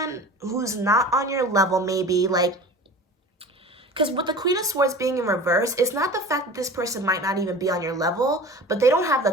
who's not on your level maybe, because with the Queen of Swords being in reverse, it's not the fact that this person might not even be on your level, but they don't have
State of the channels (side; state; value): both; normal; correlation 0.38